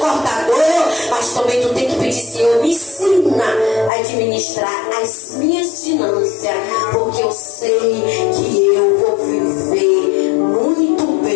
mas também tu tem que pedir, Senhor, me ensina a administrar as minhas finanças, porque eu sei que eu vou viver muito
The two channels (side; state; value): right; drops out; at 3.9 s